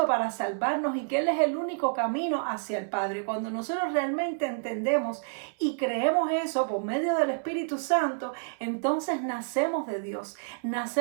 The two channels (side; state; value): left; silent; 59 dB below the other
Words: para salvarnos y que Él es el único camino hacia el Padre. Cuando nosotros realmente entendemos y creemos eso por medio del Espíritu Santo, entonces nacemos de Dios,